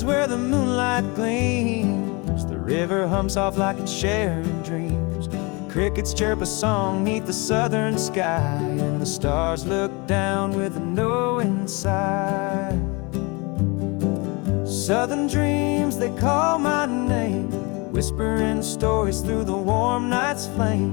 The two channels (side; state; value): right; quieter; 28.0 dB